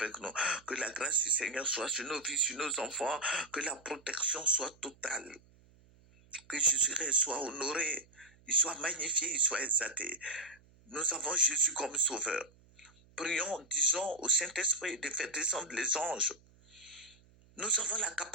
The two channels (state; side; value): noise; right; hum, 28 dB below the sound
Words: nous, que la grâce du Seigneur soit sur nos vies, sur nos enfants, que la protection soit totale, que Jésus-Christ soit honoré, il soit magnifié, il soit exalté. Nous avons Jésus comme sauveur. Prions, disons au Saint-Esprit de faire descendre les anges. Nous avons la